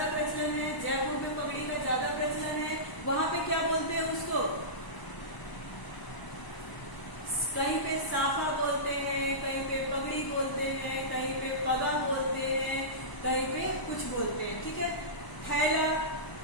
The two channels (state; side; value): late; right; 1.0 ms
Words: प्रचलन है, जयपुर में पगड़ी का ज्यादा प्रचलन है। वहाँ पे क्या बोलते हैं उसको, कहीं पे साफा बोलते हैं, कहीं पे पगड़ी बोलते हैं, कहीं पे पगा बोलते हैं, कहीं पे कुछ बोलते हैं, ठीक है। थैला,